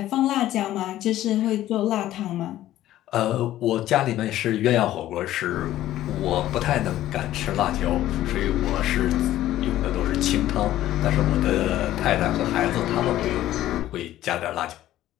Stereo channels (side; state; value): right; quieter; 13.8 dB